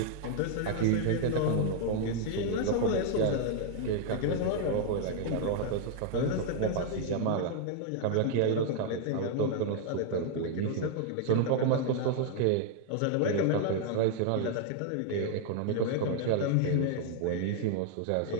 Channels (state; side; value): different; both; correlation 0.00